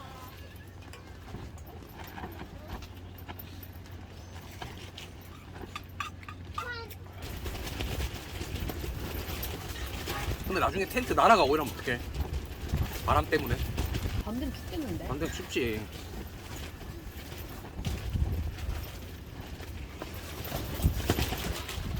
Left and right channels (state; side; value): identical; both; correlation 1.00